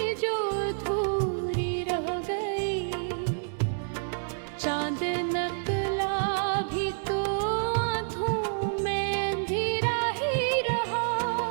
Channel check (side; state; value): left; silent; digital silence